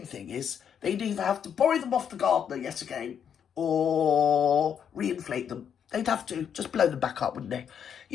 thing is they'd either have to borrow them off the gardener yet again, or reinflate them. They'd have to just blow them back up, wouldn't they?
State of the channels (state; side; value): quieter; right; 8.1 dB